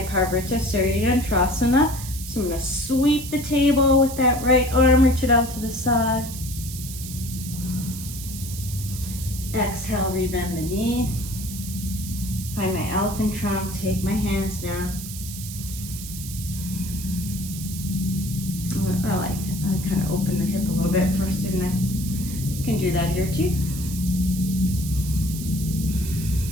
ustrasansa. So I'm going to sweep the table with that right arm, reach it out to the side. Exhale, rebend the knee. Find my elephant trunk, take my hands down. Oh, I kind of opened the hip a little bit first, didn't I? You can do that here too.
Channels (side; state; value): right; noise; hiss, 10 dB below the sound